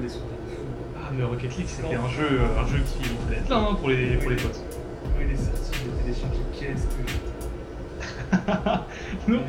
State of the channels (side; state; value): both; identical; correlation 1.00